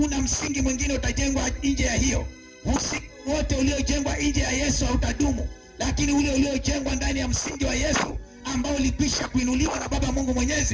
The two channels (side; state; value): both; identical; correlation 1.00